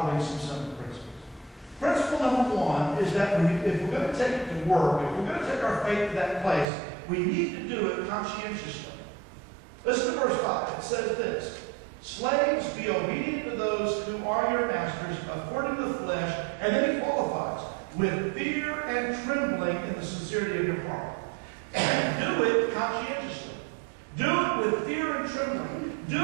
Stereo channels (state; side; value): drops out; left; at 6.7 s